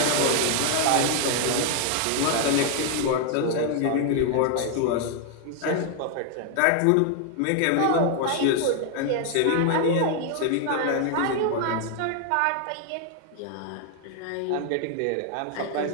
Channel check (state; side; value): different; both; correlation 0.00